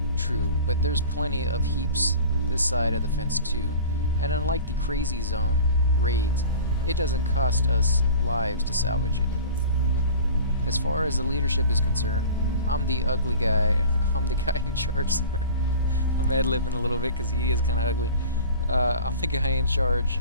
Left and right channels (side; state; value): both; inverted; correlation -0.40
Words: True, but there's plenty of heaps this side of the fence too, and unlike the crazy zone raids, it doesn't cost us lives to salvage it. As far as the leadership is concerned, I'm the ugly guy. I'm the guy in charge. Sorry. I'm ad-libbing a little bit because he is kind of ugly. I'm the guy in charge